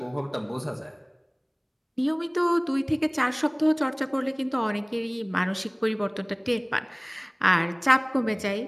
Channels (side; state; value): both; identical; correlation 1.00